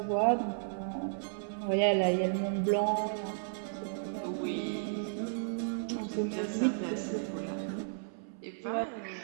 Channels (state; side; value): silent; left; 55 dB below the other